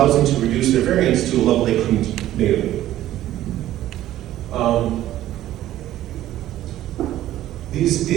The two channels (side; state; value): left; quieter; 13.6 dB